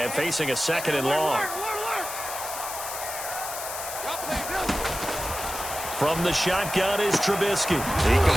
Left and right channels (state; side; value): noise; left; hiss, 7 dB below the sound